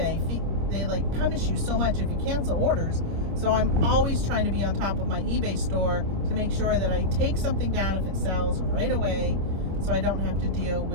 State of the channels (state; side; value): late; left; 26 ms